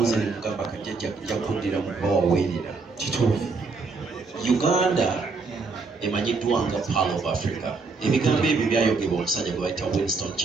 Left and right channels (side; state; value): left; quieter; 4.2 dB